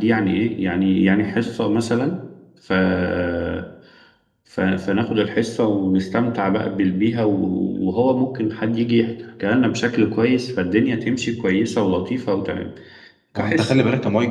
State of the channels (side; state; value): both; identical; correlation 1.00